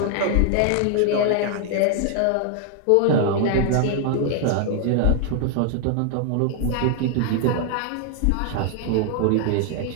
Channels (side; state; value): both; different; correlation 0.00